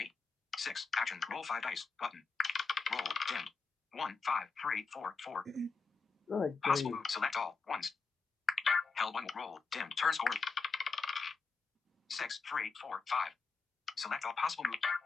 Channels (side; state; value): right; quieter; 4.8 dB